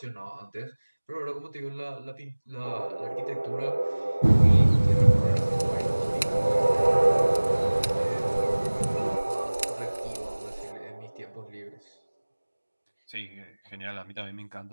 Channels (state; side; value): inverted; both; correlation -1.00